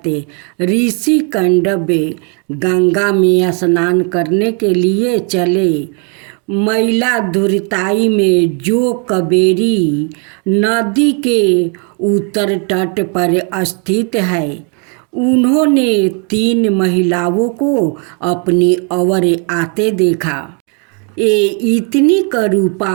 ऋषि कंडवे गंगा में स्नान करने के लिए चले। मैला दुर्ताई में जो कावेरी नदी के उत्तर तट पर स्थित है, उन्होंने 3 महिलाओं को अपनी ओर आते देखा। ये इतनी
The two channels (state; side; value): quieter; left; 37.7 dB